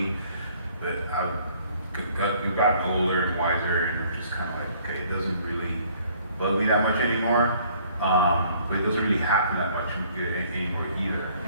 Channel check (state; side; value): inverted; both; correlation -0.59